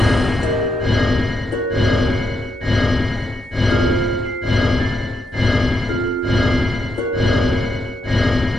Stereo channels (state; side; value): normal; both; correlation 0.82